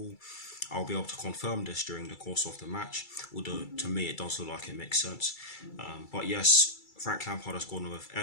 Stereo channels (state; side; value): late; right; 2.3 ms